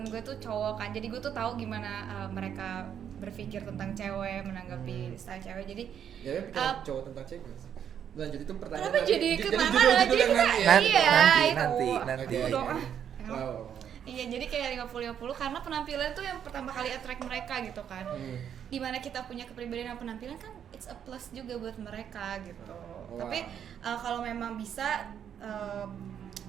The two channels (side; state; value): left; quieter; 8.8 dB